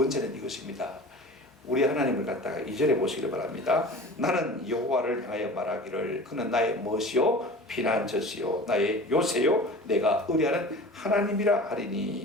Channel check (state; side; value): normal; both; correlation 0.38